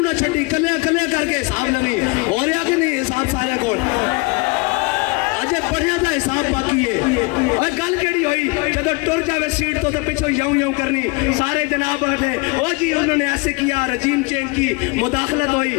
نہ چھڈی کلے کلے کر کے حساب لوی ہو رہا کہ نہیں حساب سارے کول اجے پڑھیا دا حساب باقی ہے اور گل کیڑی ہوئی جدو ٹر جاوے سیٹ تو پیچھے یوں یوں کرنی سارے جناب بیٹھے او جی انہوں نے ایسے کیا رجیم چینج کی مداخلت ہوئی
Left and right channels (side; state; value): right; quieter; 26.9 dB